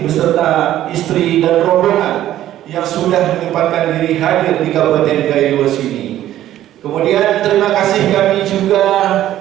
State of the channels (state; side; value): quieter; left; 12.9 dB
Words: istri dan rombongan yang sudah menyempatkan diri hadir di Kabupaten Gaylues ini. Kemudian terima kasih kami juga